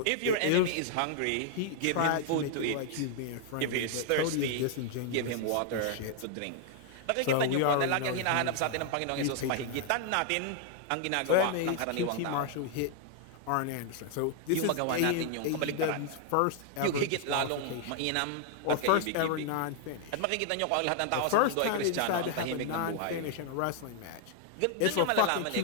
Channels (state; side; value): different; both; correlation 0.00